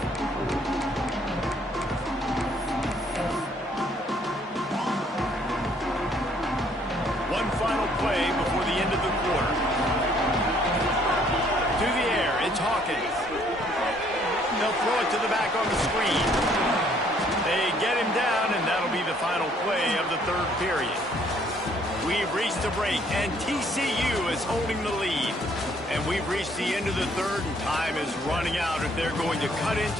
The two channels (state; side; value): normal; both; correlation 0.64